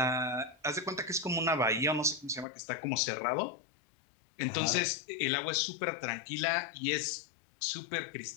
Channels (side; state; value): right; drops out; at 2.5 s